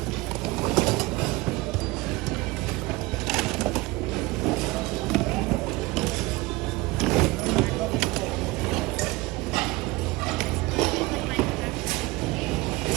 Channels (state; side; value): quieter; left; 21.6 dB